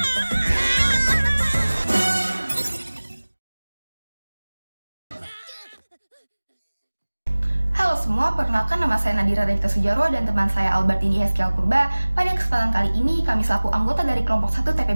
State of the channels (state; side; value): inverted; both; correlation -1.00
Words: semua, perkenalkan nama saya Nadira Regita Sujarwo dan teman saya Albertini Heskel Purba. Pada kesempatan kali ini, kami selaku anggota dari kelompok 1